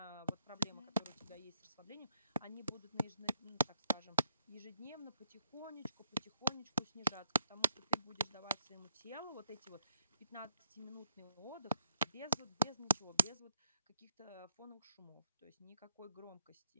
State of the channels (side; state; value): both; inverted; correlation -0.71